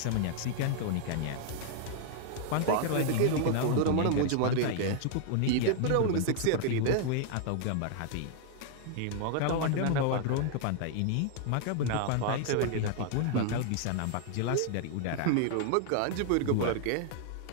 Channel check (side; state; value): both; different; correlation 0.00